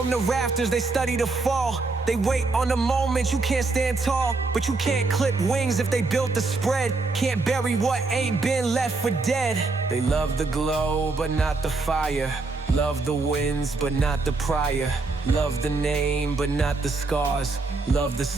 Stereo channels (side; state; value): left; quieter; 3.7 dB